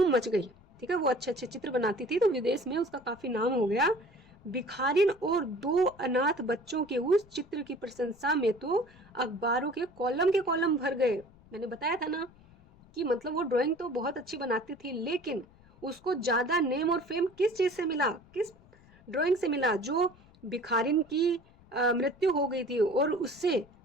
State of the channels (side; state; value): left; noise; rumble, 27 dB below the sound